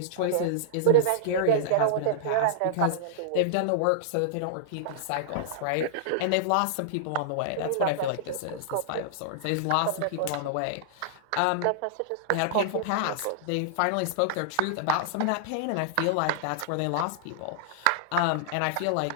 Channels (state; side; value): different; both; correlation -0.02